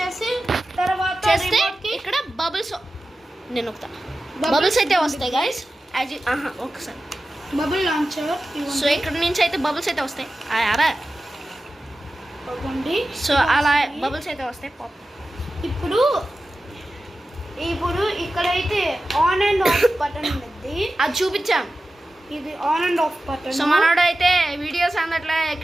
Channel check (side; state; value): both; normal; correlation 0.94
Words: తర్వాత చేస్తే ఇక్కడ బబుల్స్ నేను ఒకతా బబుల్స్ అయితే వస్తాయి గైస్ ఒకసారి బబుల్ లాంచర్ సో ఇక్కడ నుంచి అయితే బబుల్స్ అయితే వస్తాయి అరా ఇవ్వండి. సో అలా బబుల్స్ అయితే వస్తాయి పాప్. ఇప్పుడు ఇక్కడైతే ఆన్ అండ్ ఆఫ్ బటన్ ఉంది, అది చూపించాం. ఇది on and of button. So మనోడు అయితే వీడియోస్ అందట్లే